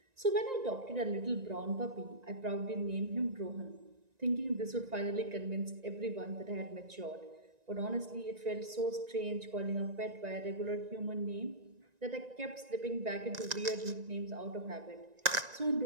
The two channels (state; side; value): late; left; 1.9 ms